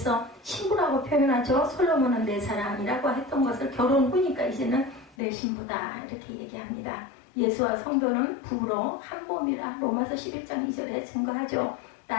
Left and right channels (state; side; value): drops out; right; at 5.2 s